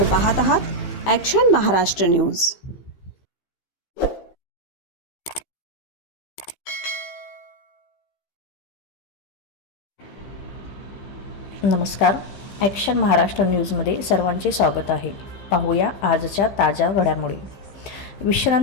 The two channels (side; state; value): right; late; 15 ms